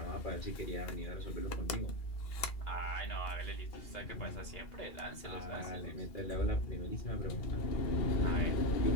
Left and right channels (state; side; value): late; right; 2.7 ms